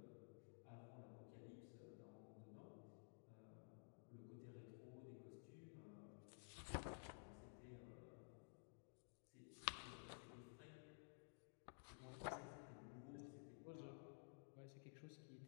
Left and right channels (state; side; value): silent; right; digital silence